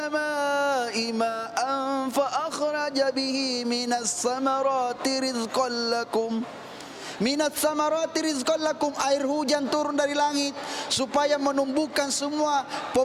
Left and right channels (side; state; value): both; identical; correlation 1.00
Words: ma'an fa akhraja bihi minas samarati rizqan lakum. Minat samarati rizqan lakum, air hujan turun dari langit supaya menumbuhkan semua